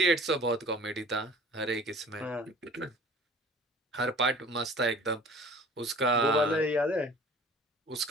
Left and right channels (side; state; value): both; normal; correlation 0.47